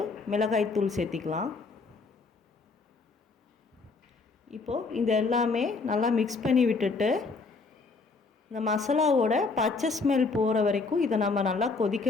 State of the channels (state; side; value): quieter; right; 4.1 dB